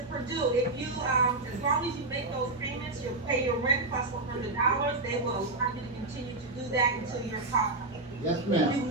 Purdue, if you, as long as you make those payments, you'll pay your rent plus $100, they will allow you to continue to do that until you're caught. Yes, If you ma'am.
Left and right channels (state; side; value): quieter; left; 3.0 dB